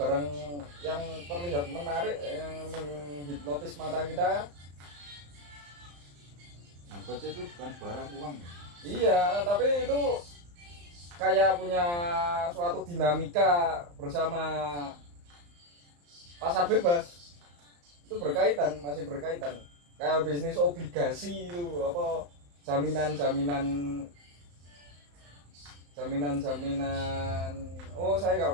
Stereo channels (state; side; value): late; left; 35 ms